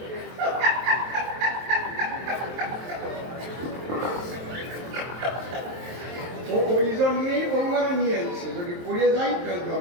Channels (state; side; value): late; left; 23 ms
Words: ওই জন্যই বৌমারা নিয়ে আসছে, যদি পড়ে যাই তাহলে